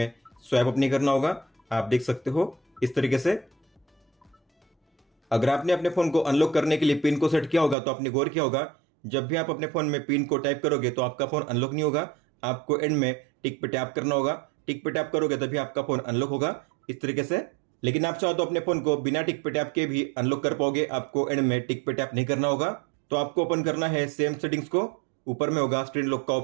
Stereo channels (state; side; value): drops out; left; at 7.8 s